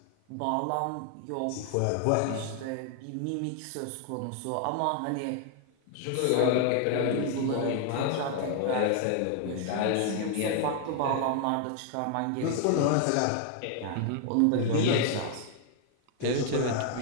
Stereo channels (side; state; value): both; different; correlation 0.00